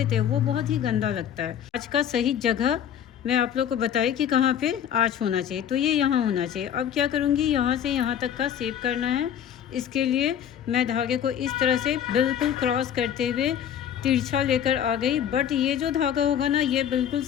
हैं, वो बहुत ही गंदा लगता है। आज का सही जगह मैं आप लोग को बताई कि कहाँ पे आज होना चाहिए, तो ये यहाँ होना चाहिए। अब क्या करूँगी, यहाँ से यहाँ तक का शेप करना है। इसके लिए मैं धागे को इस तरह से बिल्कुल क्रॉस करते हुए तिरछा लेकर आ गई। बट ये जो धागा होगा ना, ये बिल्कुल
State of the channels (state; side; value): quieter; right; 9.4 dB